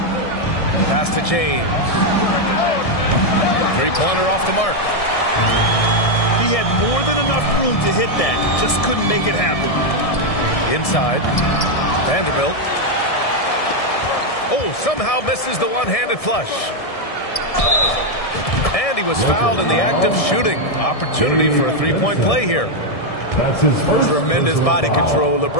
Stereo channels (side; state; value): right; late; 1.7 ms